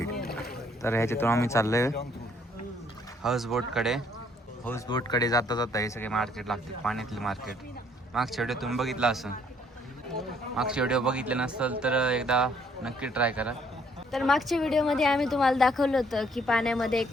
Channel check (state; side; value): normal; both; correlation 0.65